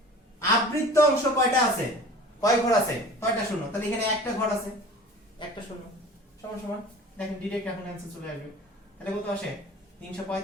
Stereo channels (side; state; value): both; normal; correlation 0.42